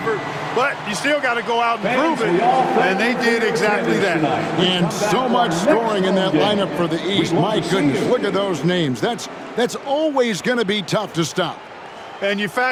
but you still got to go out and prove it, and they did exactly that. And so much scoring in that lineup for the East. My goodness, look at those names. That's always going to be tough to stop. And you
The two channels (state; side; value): identical; both; correlation 1.00